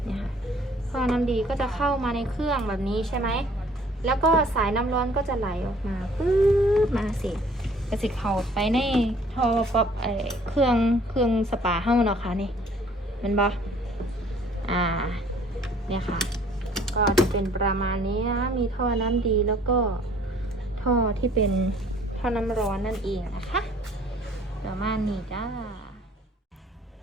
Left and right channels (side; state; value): both; normal; correlation 0.57